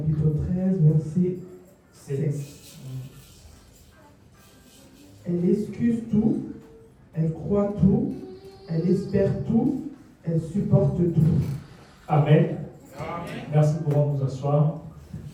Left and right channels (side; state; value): both; identical; correlation 1.00